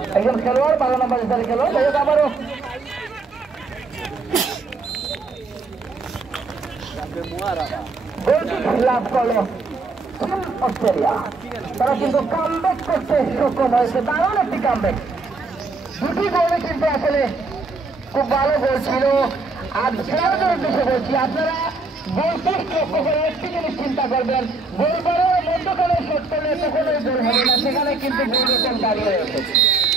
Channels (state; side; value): quieter; left; 3.7 dB